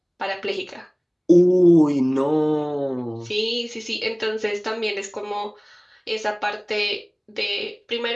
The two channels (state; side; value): identical; both; correlation 1.00